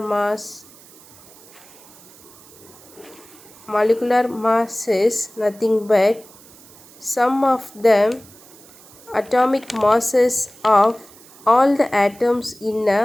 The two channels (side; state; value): right; noise; hiss, 23 dB below the sound